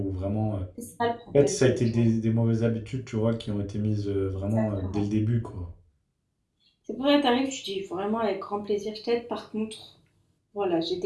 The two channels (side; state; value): both; identical; correlation 1.00